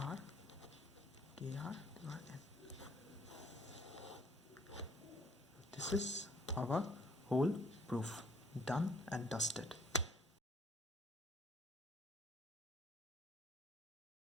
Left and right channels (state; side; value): normal; both; correlation 0.61